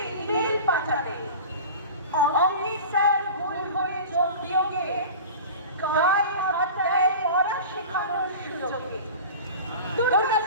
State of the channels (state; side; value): inverted; both; correlation -0.35